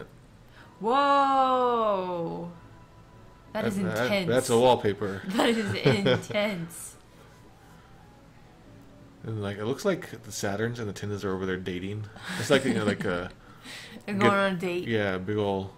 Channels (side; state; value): both; identical; correlation 1.00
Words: Whoa! That is intense. That's a wallpaper. That is intense. And like it looks like the Saturns and the Tindas are over there dating. It's like like a And going on a date. Yeah, big ol'